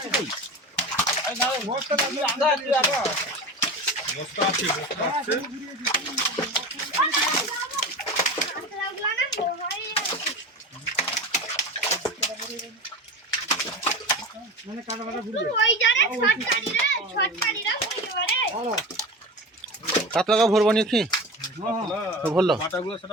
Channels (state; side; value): normal; both; correlation 0.29